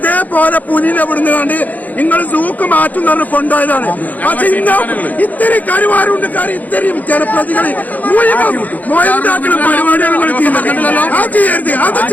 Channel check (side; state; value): right; late; 0.080 ms